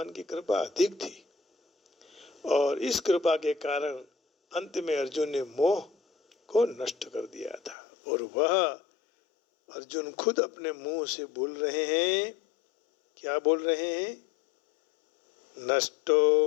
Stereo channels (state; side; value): drops out; right; at 7.8 s